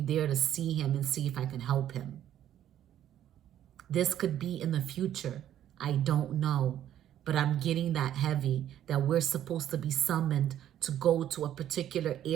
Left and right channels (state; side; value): quieter; left; 11.2 dB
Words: there to see him and see if I can help him. This could be in the future. I don't know. But I'm getting that heavy that we're supposed to be summoned to go to a particular